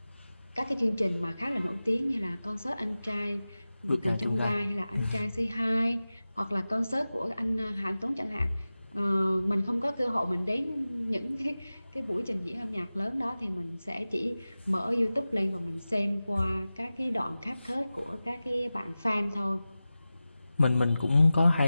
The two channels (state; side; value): inverted; both; correlation -0.96